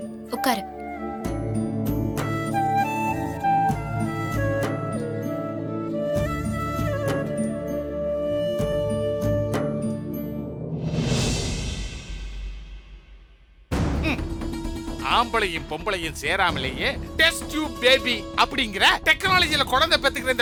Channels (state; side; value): identical; both; correlation 1.00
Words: உட்காரு. ஆம்பளையும் பொம்பளையும் சேராமலேயே டெஸ்ட் டியூப் பேபி அப்படிங்கிற டெக்னாலஜில குழந்தை பெத்துக்கிற